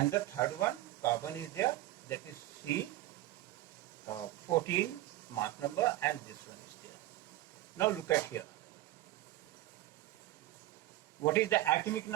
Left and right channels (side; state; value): left; quieter; 16.1 dB